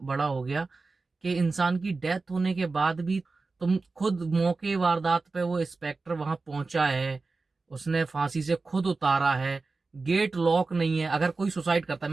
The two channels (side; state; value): left; quieter; 3.9 dB